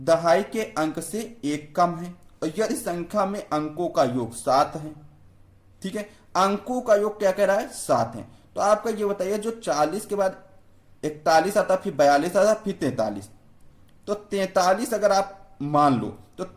के अंक से एक कम है और यदि संख्या में अंकों का योग 7 है। ठीक है, अंकों का योग क्या कह रहा है, 7 है। तो आपका ये बताइए, जो 40 के बाद 41 आता, फिर 42 आता, फिर 43, तो 43 अगर आप मान लो तो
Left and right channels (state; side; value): identical; both; correlation 1.00